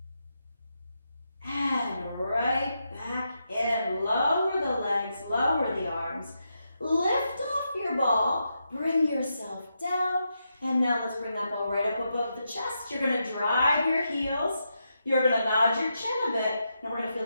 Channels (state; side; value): inverted; both; correlation -0.84